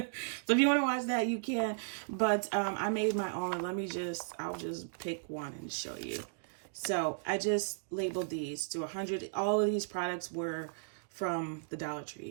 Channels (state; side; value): silent; left; digital silence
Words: So if you want to watch that, you can. But I made my own. I'll just pick one and show you. So I just labeled these to 100. All of these products were from the Dollar